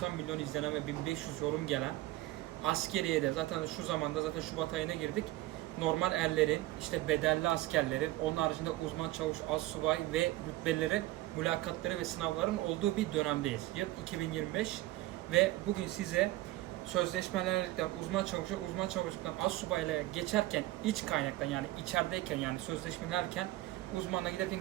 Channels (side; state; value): left; quieter; 17.1 dB